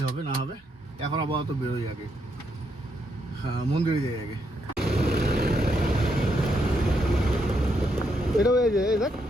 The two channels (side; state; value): both; normal; correlation 0.78